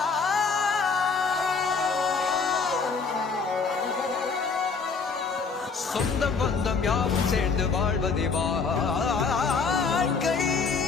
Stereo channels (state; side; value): quieter; right; 5.0 dB